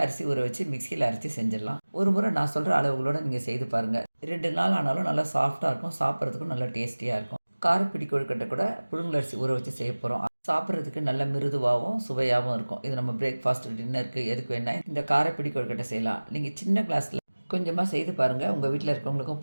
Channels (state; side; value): inverted; both; correlation -1.00